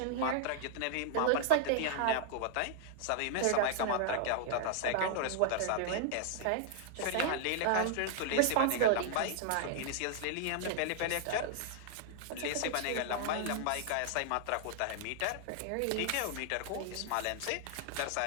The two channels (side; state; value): both; different; correlation -0.01